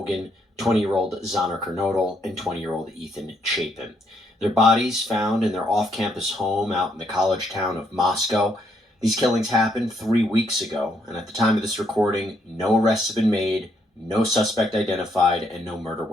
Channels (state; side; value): normal; both; correlation 0.73